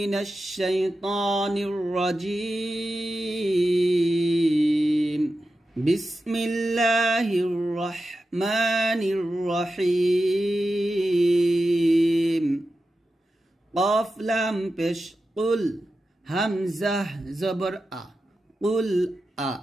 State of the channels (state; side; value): normal; both; correlation 0.91